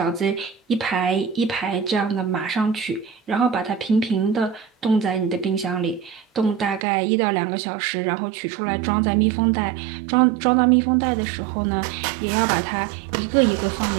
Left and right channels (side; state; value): left; drops out; at 6.8 s